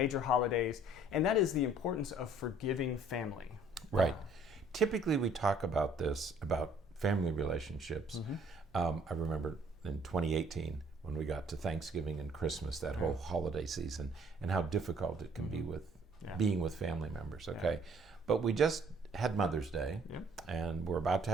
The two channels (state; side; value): normal; both; correlation 0.59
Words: holidays, and that is the importance of forgiving family. Right. Typically, we talk about this, about family relationships. I remember in 2018, when we got to Thanksgiving and Christmas, that whole holiday season, and how difficult it can be with being with family members, okay? But we just had Mother's Day, and we're about to